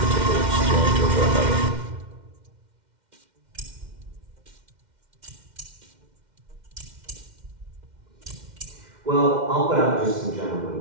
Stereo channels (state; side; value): late; left; 2.1 ms